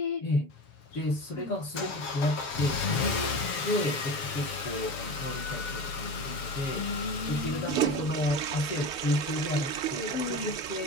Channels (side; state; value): right; late; 7.5 ms